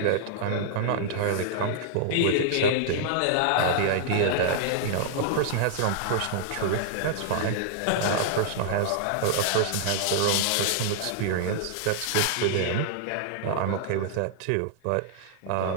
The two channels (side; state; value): both; different; correlation -0.01